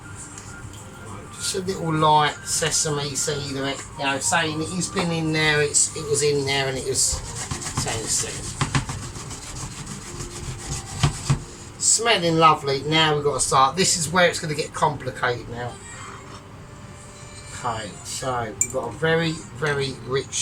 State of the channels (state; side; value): identical; both; correlation 1.00